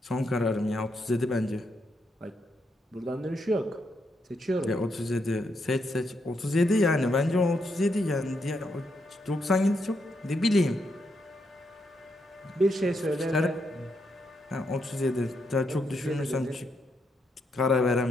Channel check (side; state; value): both; normal; correlation 0.80